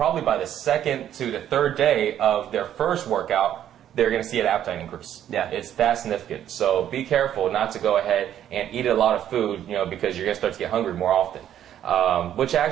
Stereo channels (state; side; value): quieter; left; 10.7 dB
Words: by the second to the third day of their first workout, they're going to see an appetite increase. Yeah. It's that significant. So be careful not to go ahead and eat a lot of food, because you're going to start to get hungry more often. Which